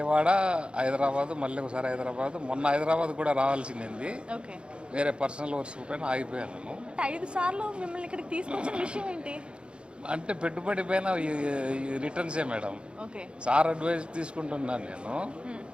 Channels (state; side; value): late; left; 0.056 ms